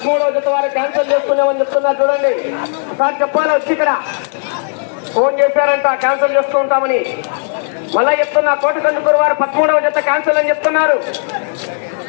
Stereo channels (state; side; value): silent; right; digital silence